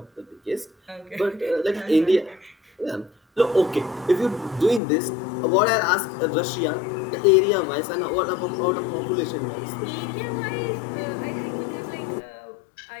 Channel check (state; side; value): drops out; right; at 4.8 s